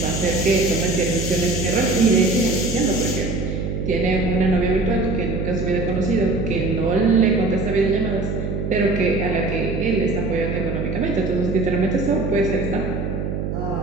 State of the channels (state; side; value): noise; right; hum, 3 dB below the sound